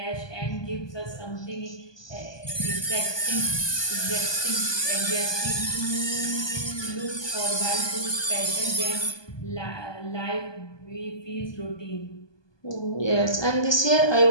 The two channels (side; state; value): right; late; 1.2 ms